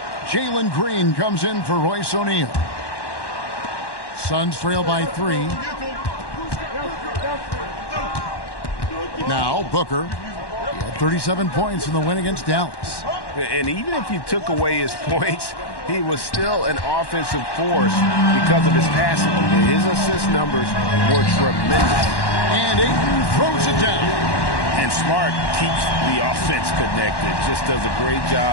Jalen Green comes in for Royce O'Neal. Suns trail by 3. Now Booker at 37 points in the win against Dallas. And even if you took away his points, he was still an offensive force because of his passing. His assist numbers were tremendous. And Ayton throws it down. And Smart keeps the offense connected. Just does a great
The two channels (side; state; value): right; late; 1.1 ms